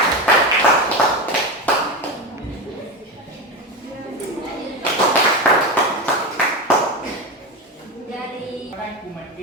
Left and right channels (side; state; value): both; normal; correlation 0.18